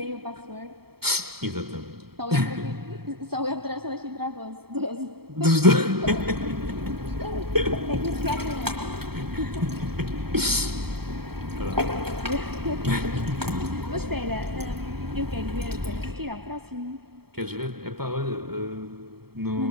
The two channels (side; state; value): left; late; 0.96 ms